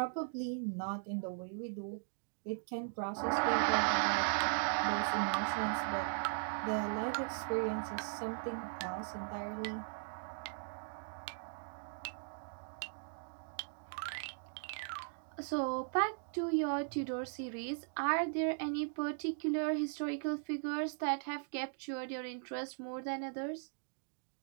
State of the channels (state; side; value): silent; left; digital silence